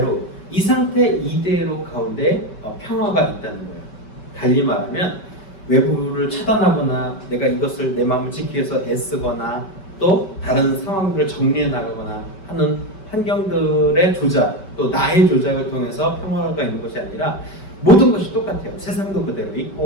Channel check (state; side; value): late; right; 5.2 ms